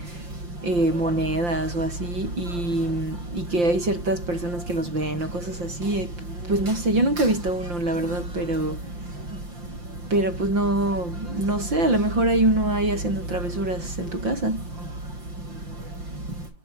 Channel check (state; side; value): late; left; 5.8 ms